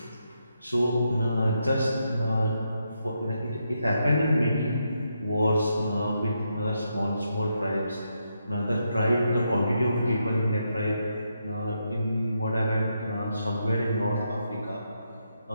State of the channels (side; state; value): both; inverted; correlation -0.81